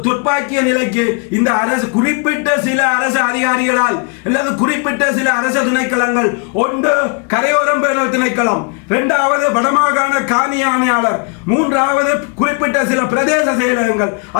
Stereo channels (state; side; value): quieter; right; 34.8 dB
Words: துப்பாக்கிய நிலைக்கு இந்த அரசு குறிப்பிட்ட சில அரசு அதிகாரிகளால் அல்லது குறிப்பிட்ட சில அரசு திணைக்களங்கள், ஒன்று கரையோரம் பேணல் திணைக்களம், 2வது வடமாகாண காணி ஆணையாளர், 3வது குறிப்பிட்ட சில பிரதேச செயலகங்கள்,